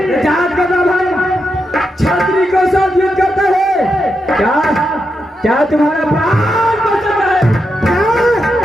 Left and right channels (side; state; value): both; normal; correlation 0.85